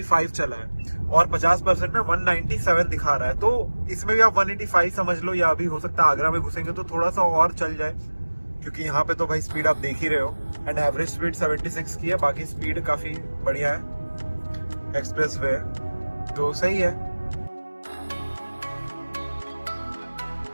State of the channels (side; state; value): both; inverted; correlation -1.00